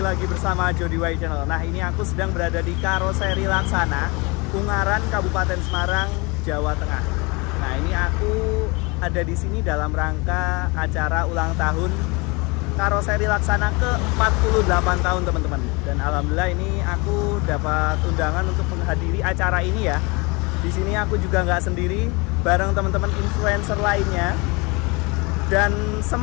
lagi bersama Jody Y Channel. Nah, ini aku sedang berada di Karoseri Laksana, Ungaran, Kabupaten Semarang, Jawa Tengah. Nah, ini aku ada di sini dalam rangka acara ulang tahun Karoseri Laksana ke-48 tahun, teman-teman. Dan alhamdulillah ini aku dapat undangan untuk menghadiri acara ini ya. Di sini aku juga nggak sendiri, bareng teman-teman influencer lainnya. Dan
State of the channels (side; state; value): right; quieter; 27.5 dB